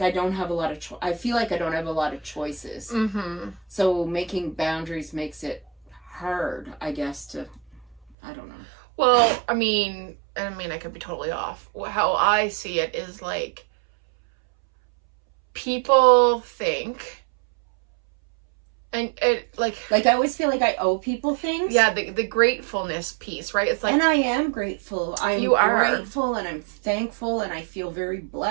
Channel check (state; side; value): drops out; left; at 8.2 s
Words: I don't have a lot of, I feel like I don't have a lot of choices. Mm-hmm. So making boundaries makes it hard, I guess, to, I don't know. Well, I mean, I could be totally off. How I see it is like, people think, and it like I always feel like I owe people things. yeah, the gratefulness piece, right? It's like, and I am grateful. I'm You are. grateful and I'm thankful and I feel very